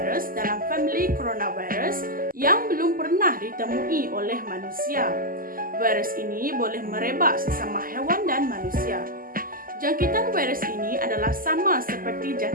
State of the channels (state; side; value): late; left; 0.41 ms